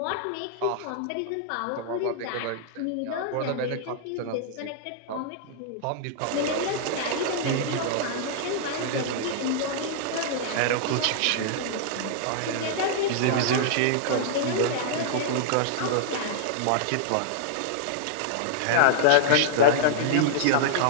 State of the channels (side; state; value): both; different; correlation -0.01